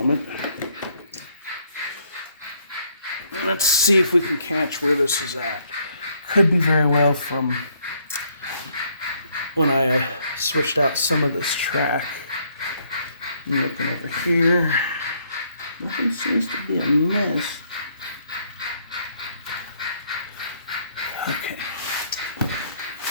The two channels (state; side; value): inverted; both; correlation -0.68